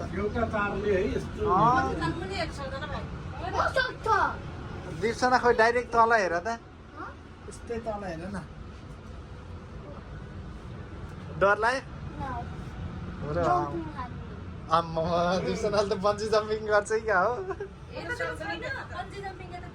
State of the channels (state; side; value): identical; both; correlation 1.00